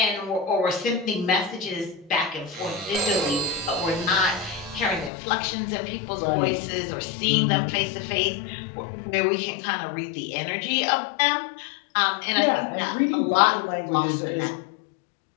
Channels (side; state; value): right; drops out; at 5.1 s